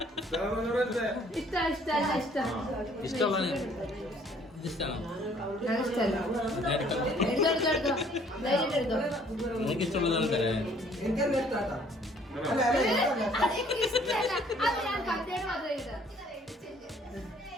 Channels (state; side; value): normal; both; correlation 0.59